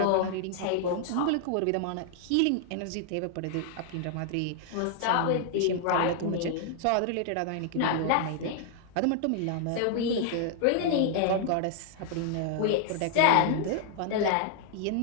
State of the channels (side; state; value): both; different; correlation 0.00